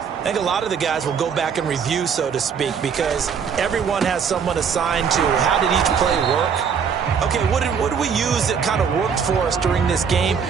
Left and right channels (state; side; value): quieter; left; 6.8 dB